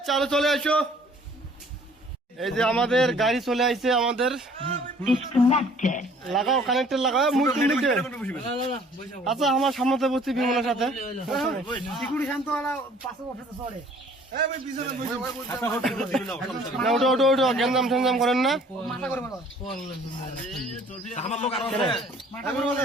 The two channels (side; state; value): both; normal; correlation 0.55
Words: চালো চলে আসো। এই যে আমাদের গাড়ি চলে আসছে, আমাদের লাগাও কানেক্টর লাগাও। আচ্ছা আমার সামনে বসছি বিমলের সাথে। ওটো ওটো ওটো গ্যাঞ্জাম ঠ্যাঞ্জাম করেন না।